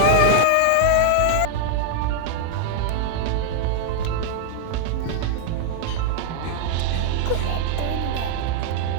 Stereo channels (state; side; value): different; both; correlation -0.01